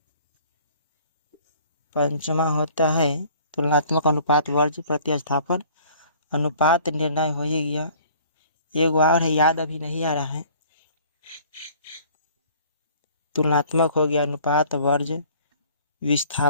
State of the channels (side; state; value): both; inverted; correlation -0.53